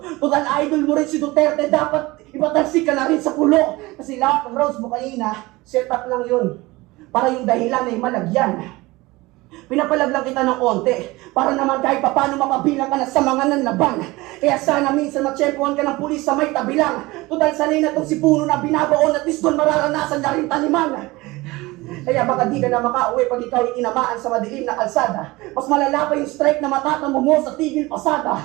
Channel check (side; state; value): left; quieter; 21.2 dB